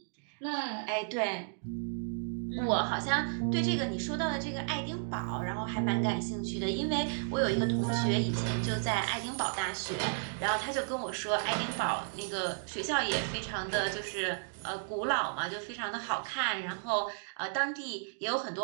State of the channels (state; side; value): silent; left; digital silence